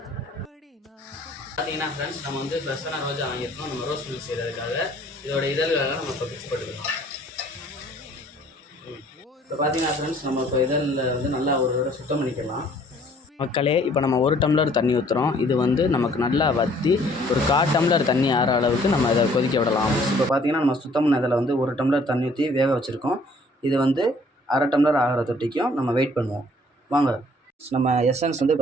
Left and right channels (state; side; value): normal; both; correlation 0.58